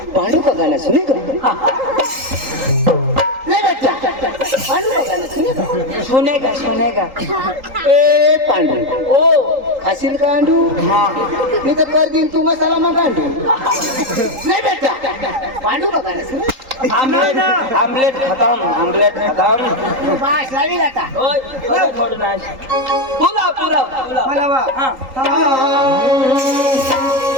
पांडू का गाणं सुनेगा ले बेटा पांडू का गाणं सुनेगा सुनेगा सुनेगा ए पांडू ओ खाशील पांडू हा मी तर कर दिन तू मसाला मग गांडू ले बेटा पांडू का गाणं सुनेगा आमलेट आमलेट खतम तू बास लावी आता ओय ओय, थोडं नाही पुलाव मला वा हा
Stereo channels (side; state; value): left; late; 3.8 ms